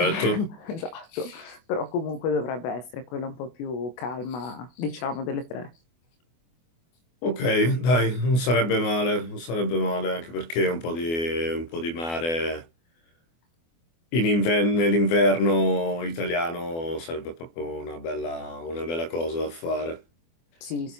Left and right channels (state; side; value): late; right; 24 ms